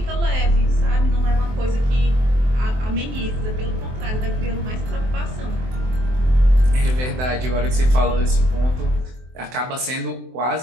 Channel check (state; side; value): late; left; 23 ms